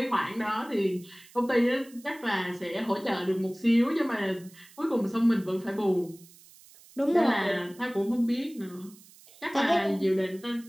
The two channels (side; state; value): right; noise; hiss, 24 dB below the sound